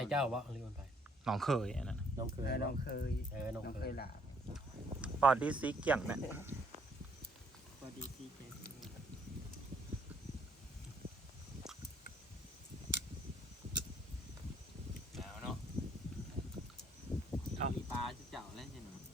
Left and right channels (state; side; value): normal; both; correlation 0.65